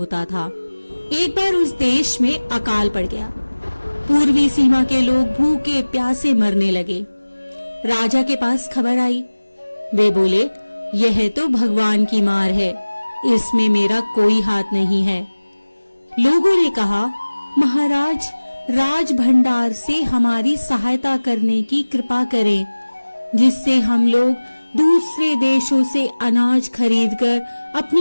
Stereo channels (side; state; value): both; inverted; correlation -1.00